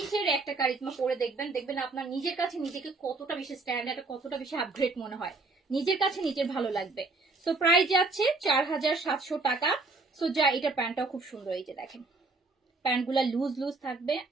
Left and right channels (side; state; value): left; quieter; 3.6 dB